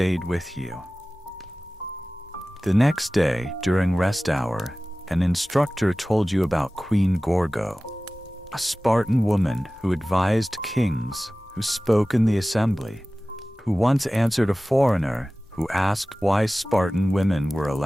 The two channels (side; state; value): both; normal; correlation 0.97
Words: with you. The next day, during rest hour, an instructor told you about Queen Gorgo, a Spartan woman who advised kings, who spoke in the assembly, who once answered a foreigner who asked why Spartan women were